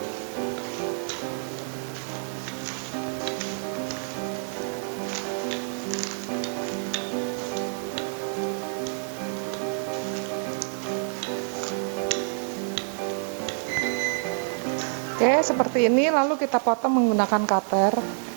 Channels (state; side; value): silent; left; digital silence